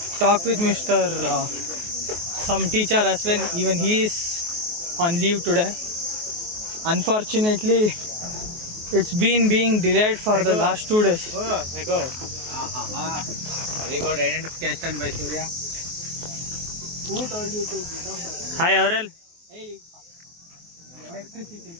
talk with Mr. Some teacher as well. Even he is on leave today. Unfortunately, it's been being delayed for the last 2 days. Oh my god. Very good identification by Surya. Who told you to get off the... Hi Aurel. Hey, electricity.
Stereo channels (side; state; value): left; late; 23 ms